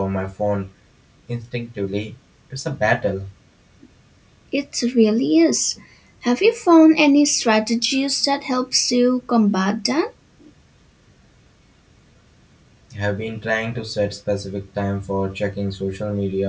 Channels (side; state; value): both; identical; correlation 1.00